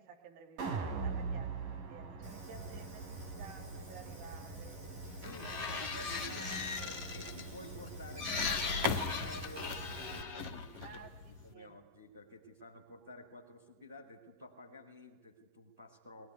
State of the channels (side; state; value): left; late; 11 ms